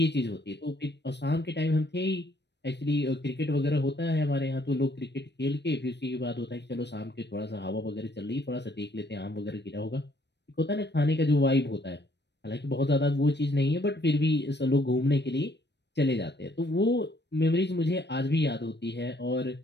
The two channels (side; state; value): right; late; 0.50 ms